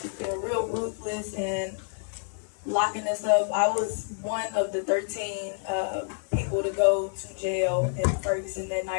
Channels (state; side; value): silent; right; digital silence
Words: just being real ruthless and locking us up. I was one of the 13 people to go to jail in Ferguson that